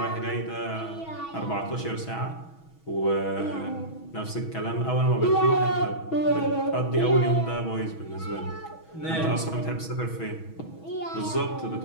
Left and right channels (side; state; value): right; late; 6.2 ms